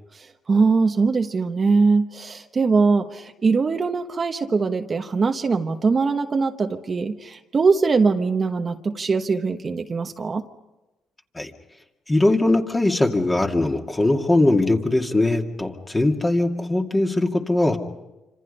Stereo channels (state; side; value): normal; both; correlation 0.92